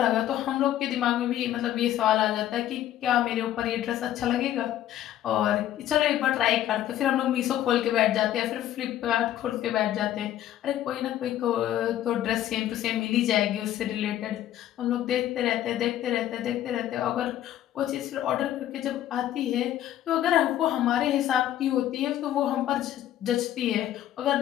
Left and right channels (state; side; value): quieter; right; 12.3 dB